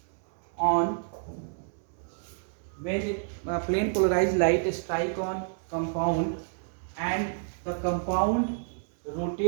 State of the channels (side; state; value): left; silent; digital silence